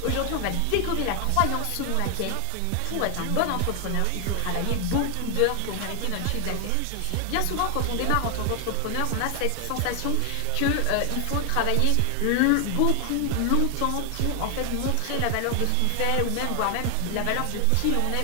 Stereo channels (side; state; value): both; different; correlation 0.00